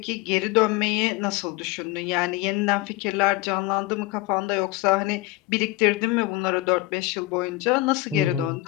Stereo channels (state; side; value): quieter; right; 19.0 dB